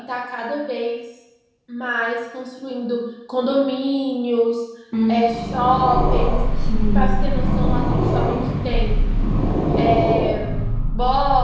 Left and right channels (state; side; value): identical; both; correlation 1.00